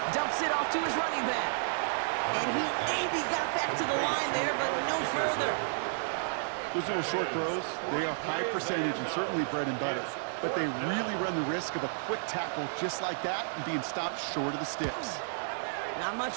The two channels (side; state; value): left; silent; 57 dB below the other